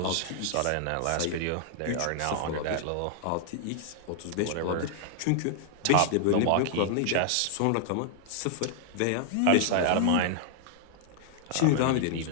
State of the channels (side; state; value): both; different; correlation -0.01